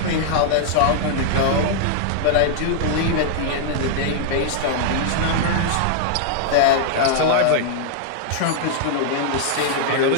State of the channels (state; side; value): different; both; correlation -0.01